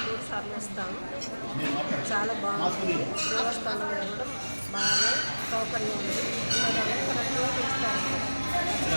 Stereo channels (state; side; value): inverted; both; correlation -1.00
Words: 3 సార్లు వస్తాము. చాలా బాగుంటుంది. దేవస్థానం కూడా బాగా సౌకర్యం ఉంది.